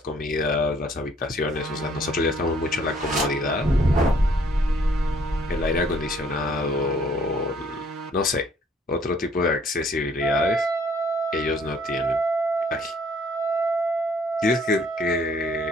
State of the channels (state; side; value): normal; both; correlation 0.62